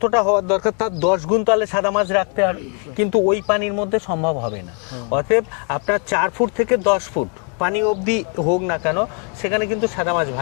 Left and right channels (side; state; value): right; quieter; 39.7 dB